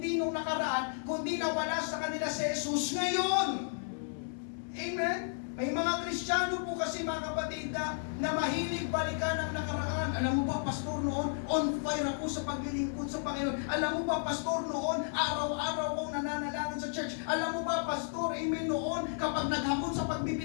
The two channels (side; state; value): right; silent; 56 dB below the other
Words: nung nakaraan, kundi nawala sa kanila si Jesus ngayon. Amen? May mga Kristiyano po kasi, mga kapatid, na mahilig balikan ang nakaraan. Alam mo ba, pastor, noon, on fire ako sa paglilingkod sa Panginoon. Alam mo ba, pastor, noon, araw-araw akong nananalangin sa church. Alam mo ba, pastor, amen, noon, kapag naghamon sa